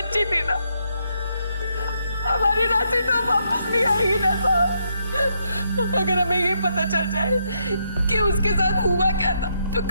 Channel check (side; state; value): both; inverted; correlation -0.78